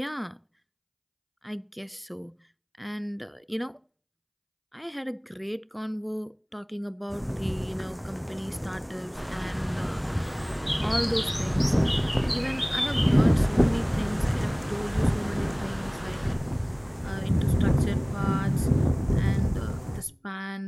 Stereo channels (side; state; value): both; identical; correlation 1.00